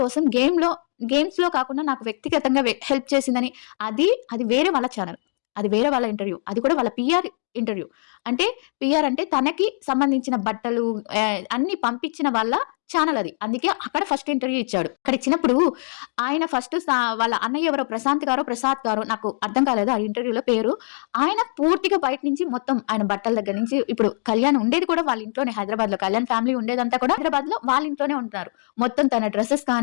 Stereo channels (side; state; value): right; silent; digital silence